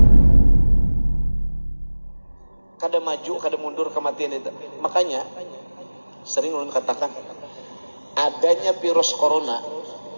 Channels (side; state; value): both; inverted; correlation -1.00